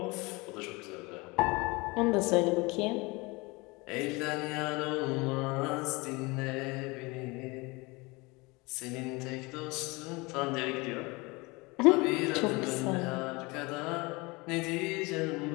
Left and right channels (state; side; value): quieter; right; 25.1 dB